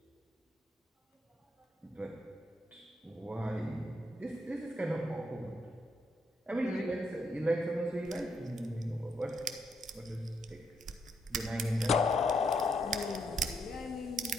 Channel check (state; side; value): normal; both; correlation 0.77